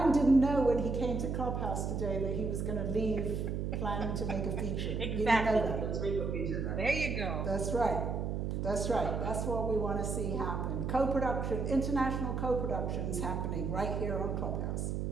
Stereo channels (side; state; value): right; noise; hum, 1 dB below the sound